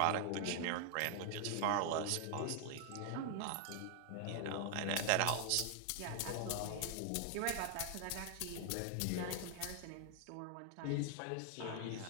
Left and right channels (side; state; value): both; different; correlation 0.00